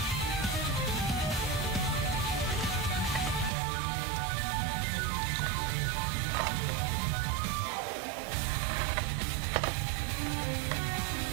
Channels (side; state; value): left; drops out; at 3.5 s